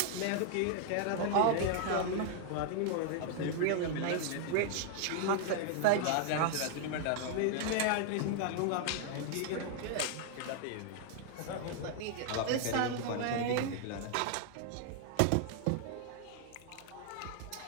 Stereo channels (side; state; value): both; different; correlation 0.00